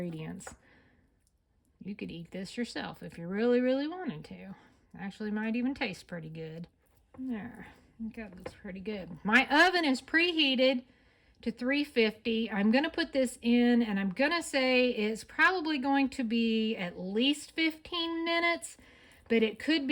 You could eat this yourself if you really, really wanted to. Actually might even taste pretty good. There, I think that looks pretty good. My oven is preheated to 350. I'm going to put this in, and I'm going to say it's probably going to be at least 15 minutes, but it could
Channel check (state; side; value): identical; both; correlation 1.00